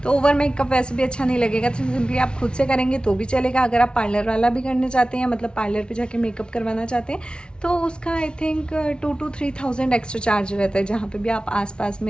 तो ओवर मेकअप वैसे भी अच्छा नहीं लगेगा, तो सिंपली आप खुद से करेंगे तो भी चलेगा। अगर आप पार्लर वाला भी करना चाहते हैं, मतलब पार्लर पर जाके मेकअप करवाना चाहते हैं, तो उसका I think 2 to 3000 extra charge रहता है। जहाँ पे भी आप आसपास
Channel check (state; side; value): late; right; 0.056 ms